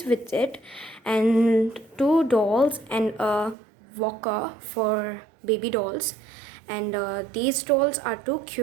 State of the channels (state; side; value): drops out; left; at 3.6 s